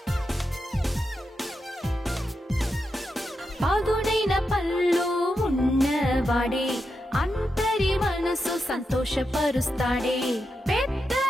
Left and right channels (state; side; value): normal; both; correlation 0.87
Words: పదునైన పళ్ళు ఉన్నవాడే. అంతరి మనసు సంతోషపరుస్తాడే. పెద్ద